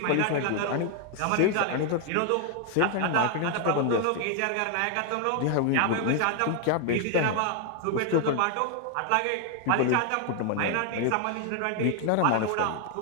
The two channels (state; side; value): different; both; correlation 0.00